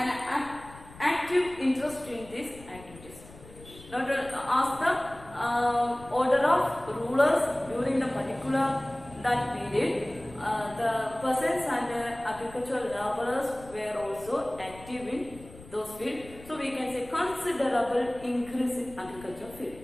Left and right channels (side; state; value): left; noise; rumble, 19 dB below the sound